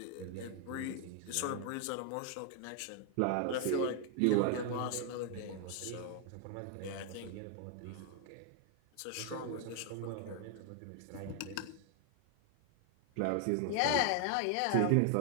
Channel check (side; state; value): both; different; correlation 0.00